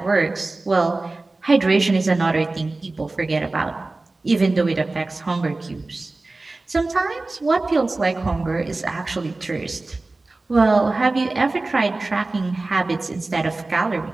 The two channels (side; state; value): left; quieter; 3.2 dB